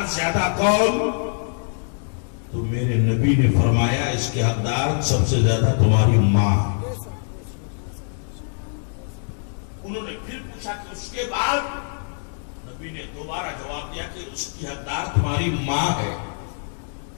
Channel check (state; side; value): silent; right; digital silence